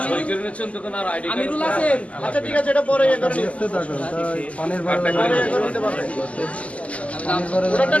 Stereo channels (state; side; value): late; right; 0.065 ms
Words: আমিরুল আছেন। আচ্ছা ঠিক আছে, এটা পরে পানির ওটা